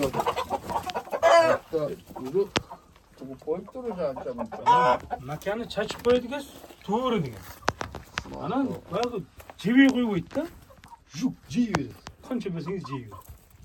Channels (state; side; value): identical; both; correlation 1.00